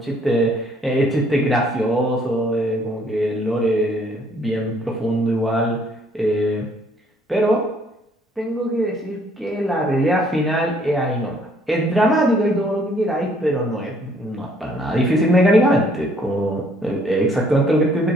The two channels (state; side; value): normal; both; correlation 0.63